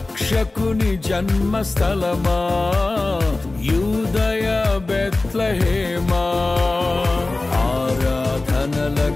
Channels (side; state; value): right; quieter; 3.1 dB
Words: జన్మస్థలమా యూదయ బెత్లెహేమా